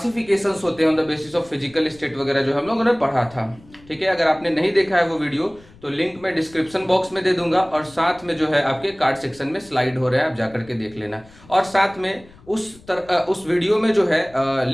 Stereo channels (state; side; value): noise; left; rumble, 25 dB below the sound